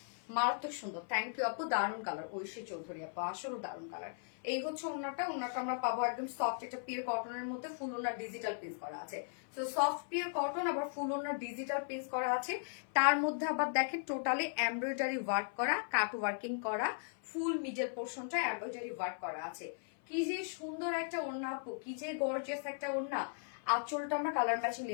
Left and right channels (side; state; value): right; silent; 53 dB below the other